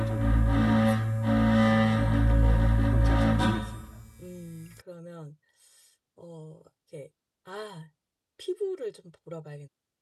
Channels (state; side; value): identical; both; correlation 1.00